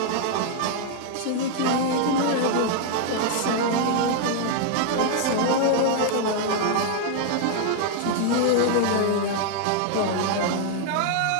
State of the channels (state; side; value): different; both; correlation 0.00